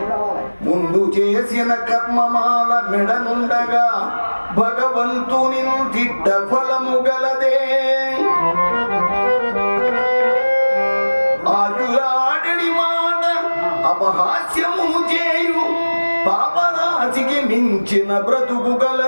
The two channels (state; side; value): inverted; both; correlation -1.00